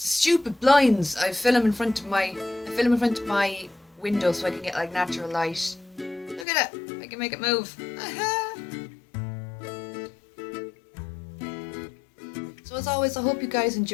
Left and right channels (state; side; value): drops out; right; at 6.5 s